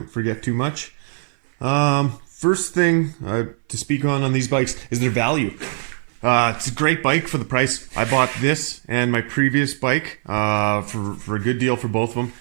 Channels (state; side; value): silent; left; 58 dB below the other